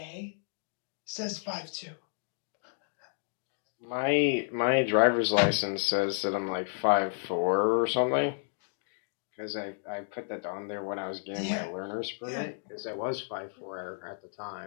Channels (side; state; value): right; silent; digital silence